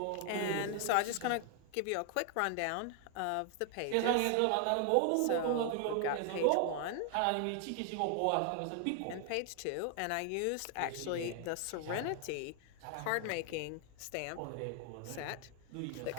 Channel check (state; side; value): different; both; correlation 0.00